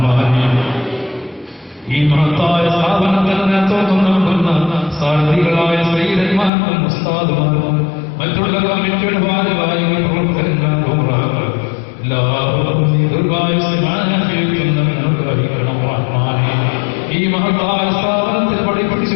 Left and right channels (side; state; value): right; drops out; at 6.5 s